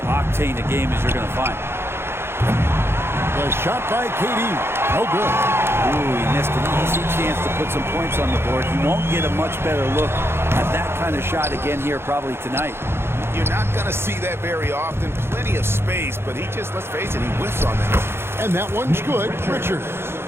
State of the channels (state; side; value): late; left; 0.12 ms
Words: a game as you're going to find. The shot by KD. No good. Ooh, he missed an easy chance to put some points on the board. He won't get a much better look at that kind of shot again here probably tonight. You're not going to see that very often. Plenty of space, but he just, let's face it, he whiffs on that. And that one's good. Richards.